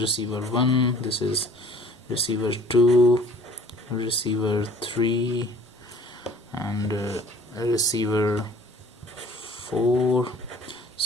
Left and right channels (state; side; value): normal; both; correlation 0.52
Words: receiver 1, this is receiver 2, receiver 3, and receiver 4.